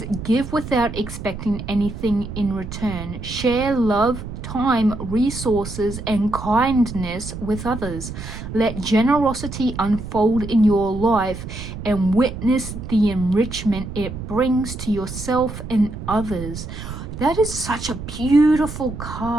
give without expecting anything in return. Share love, time, resources, and kindness with others. Let generosity unfold in your life and witness the enrichment it brings to yourself and others. That is such a beautiful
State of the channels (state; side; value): noise; right; rumble, 9 dB below the sound